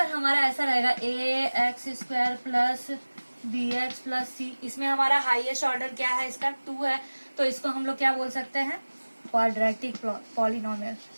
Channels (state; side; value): inverted; both; correlation -1.00